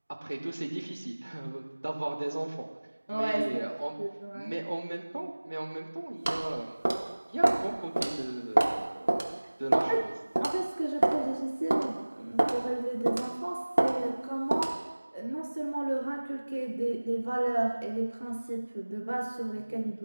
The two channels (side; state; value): both; inverted; correlation -1.00